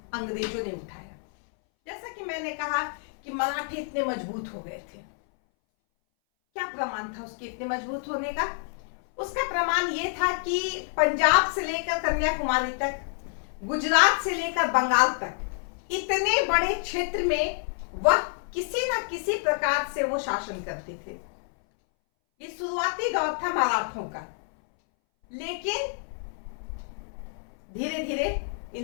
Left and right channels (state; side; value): silent; right; 59 dB below the other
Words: अंग्रेजों ने उठाया। जैसा कि मैंने कहा कि मराठे इतने मजबूत हो गए थे। क्या प्रमाण था उसके इतने मजबूत होने का? उसका प्रमाण यह था कि पंजाब से लेकर कन्याकुमारी तक, गुजरात से लेकर बंगाल तक इतने बड़े क्षेत्र में वह किसी न किसी प्रकार से वो शासन करते थे। ये शुरुआती दौर था मराठों का, लेकिन धीरे धीरे